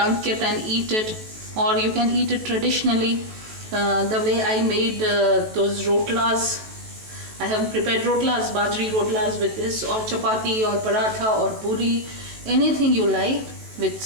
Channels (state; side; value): late; left; 18 ms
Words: it and eat it. Or you can eat it traditionally, the way I made those rotlas. I have prepared rotlas, bajri rotlas with this, or chapati or paratha or puri, anything you like, with